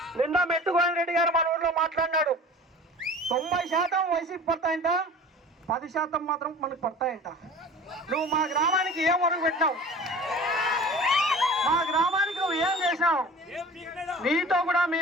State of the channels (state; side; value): normal; both; correlation 0.41